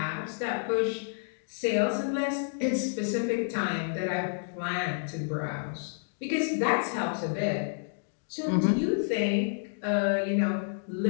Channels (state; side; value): silent; right; digital silence